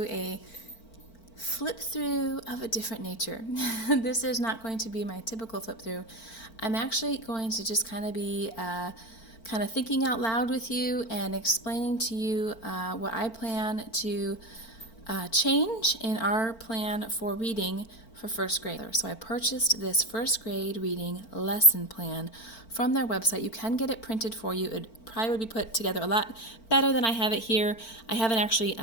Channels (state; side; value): late; right; 4.4 ms